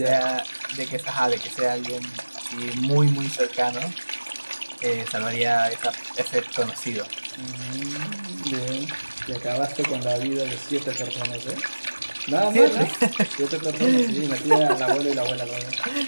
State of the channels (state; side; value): inverted; both; correlation -1.00